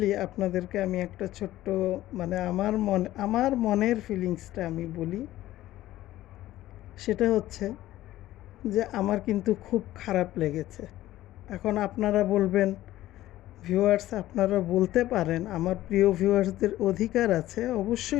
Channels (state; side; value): quieter; right; 14.9 dB